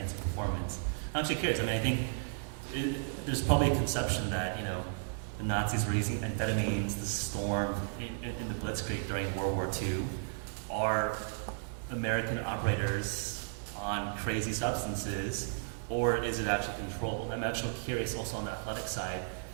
performance. I'm actually curious. I mean, I think there's probably a conception that, the Nazis were using amphetamines, the storm in the Blitzkrieg during World War II. Are American operators on crazy substances, or is it actually controlled? I'm actually curious also on the athletic side.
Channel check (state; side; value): silent; left; 55 dB below the other